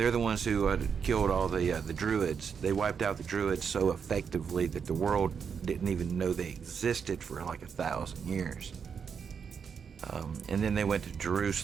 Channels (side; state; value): left; quieter; 6.6 dB